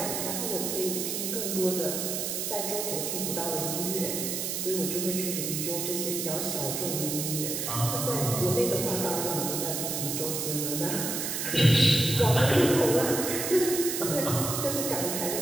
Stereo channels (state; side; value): noise; right; hiss, 2 dB below the sound